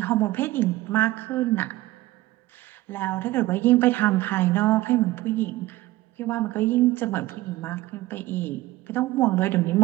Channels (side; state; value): left; quieter; 17.4 dB